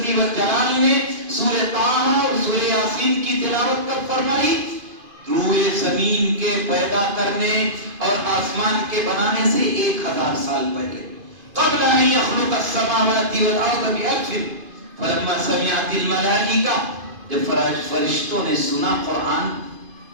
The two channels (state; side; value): late; left; 2.5 ms